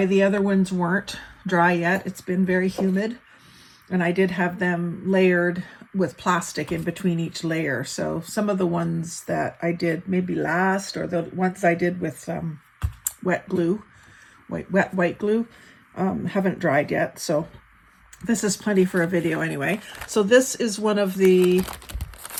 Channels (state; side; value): identical; both; correlation 1.00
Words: the other ones weren't dry yet. It's been very humid, and I did have them layered with plastic in between each layer. So some of the ones that I did maybe last, or the ones I did with wet glue, white glue, haven't dried yet. So this is plenty for a video anyway. So this is one of the